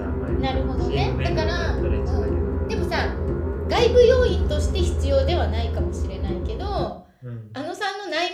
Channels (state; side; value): identical; both; correlation 1.00